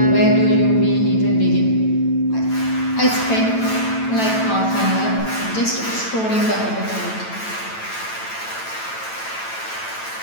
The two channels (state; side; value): late; right; 9.0 ms